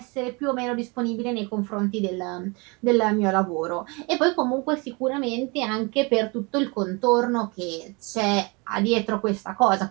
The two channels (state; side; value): quieter; left; 28.5 dB